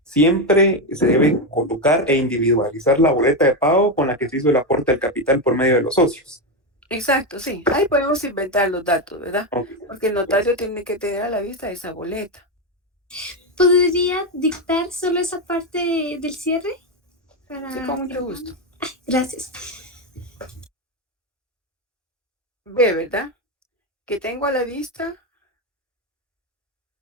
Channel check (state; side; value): normal; both; correlation 0.09